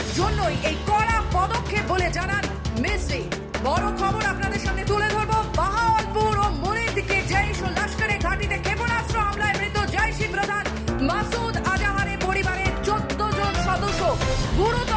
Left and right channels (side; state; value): both; identical; correlation 1.00